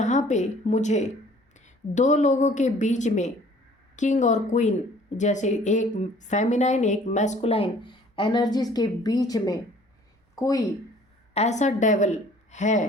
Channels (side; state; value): both; normal; correlation 0.54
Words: पे मुझे दो लोगों के बीच में किंग और क्वीन जैसे एक फेमिनाइन एक मैस्कुलाइन एनर्जीज के बीच में कोई ऐसा डेविल